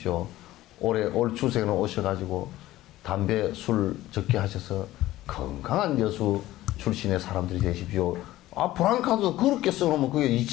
올 추석에는 오셔가지고 담배, 술 적게 하셔서 건강한 여수 출신의 사람들이 되십시오. 아, 브랑카도 그렇게 써놓으면 그게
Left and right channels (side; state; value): right; quieter; 15.8 dB